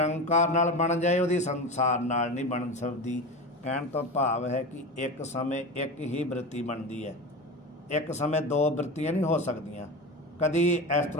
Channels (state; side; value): normal; both; correlation 0.26